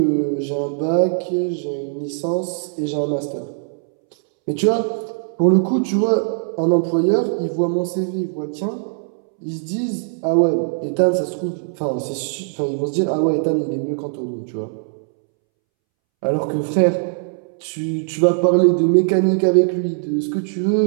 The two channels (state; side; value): silent; left; 65 dB below the other